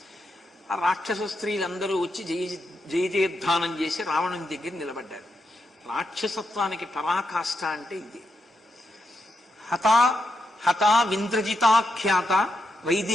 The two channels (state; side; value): normal; both; correlation 0.84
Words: ఆ రాక్షస స్త్రీలందరూ వచ్చి జయజయధ్వానం చేసి రావణుని దగ్గర నిలబడ్డారు. రాక్షసత్వానికి పరాకాష్ట అంటే ఇది. హతా హతా వింద్రజితాఖ్యాత